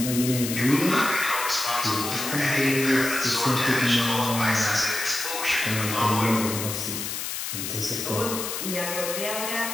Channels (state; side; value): noise; left; hiss, 4 dB below the sound